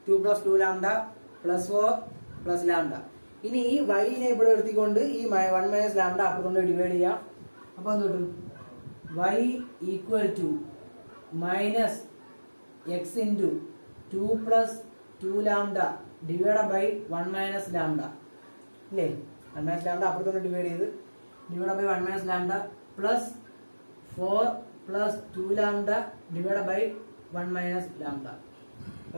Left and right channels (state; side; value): inverted; both; correlation -1.00